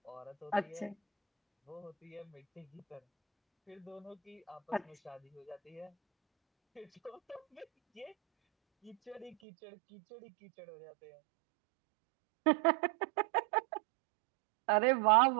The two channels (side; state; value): left; drops out; at 9.3 s